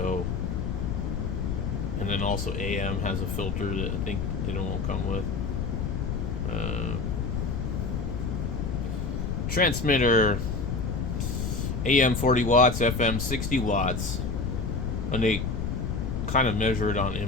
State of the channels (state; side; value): noise; left; rumble, 1 dB below the sound